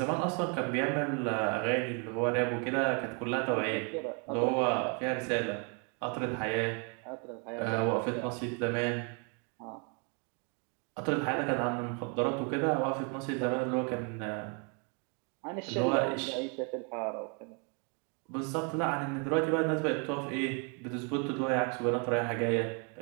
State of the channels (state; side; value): quieter; left; 36.6 dB